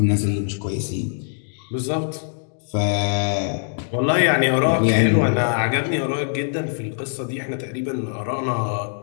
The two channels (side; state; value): right; silent; digital silence